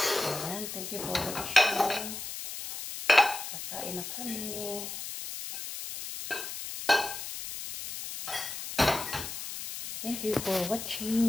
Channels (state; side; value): noise; left; hiss, 7 dB below the sound